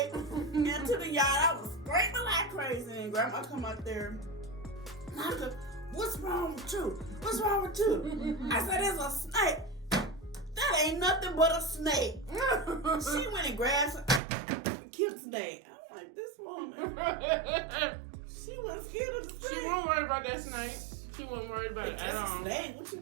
into the yard. I was screaming like crazy, and Grandma come out there. I said, "What's wrong with you? What's wrong with you?" I said, "There's a snake." That ain't nothing but a snake. She went and grabbed and killed the snake. I'm like, this woman. She wasn't scared of the snake. She wasn't worried about that snake. She wasn't worried about it at all. Snake? What you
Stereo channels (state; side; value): drops out; left; at 14.2 s